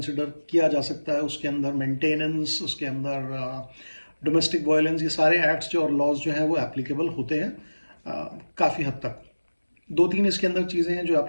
किया जा सकता है। उसके अंदर मेंटेनेंस, उसके अंदर डोमेस्टिक वायलेंस, ये सारे एक्ट्स जो और लॉज जो हैं वो एप्लीकेबल होते हैं काफ़ी हद तक। दो तीन इसके अंदर चीज़ें हैं जो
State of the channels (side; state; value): both; inverted; correlation -1.00